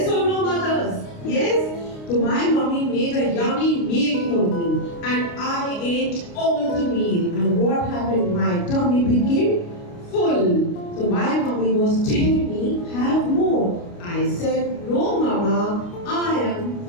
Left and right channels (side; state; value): right; late; 29 ms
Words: or no, mothers? Yes? So my mommy made a yummy meal for me and I ate all the meal. And what happened? My tummy became full. So my mommy was telling me, have more. I said, no mama, I am